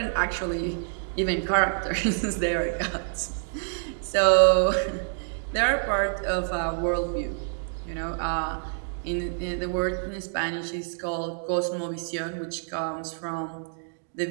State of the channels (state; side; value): silent; left; digital silence